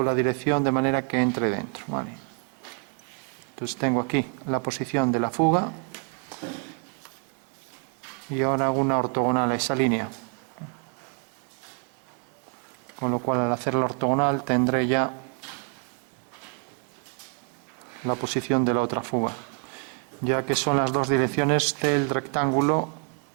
la dirección de manera que entre dentro, vale. Entonces tengo aquí la posición de la fuga y ahora hago una ortogonal a esa línea, con lo cual al hacer la ortogonal tendré ya la posición de la otra fuga, ya que son las dos direcciones del rectángulo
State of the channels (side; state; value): left; quieter; 39.9 dB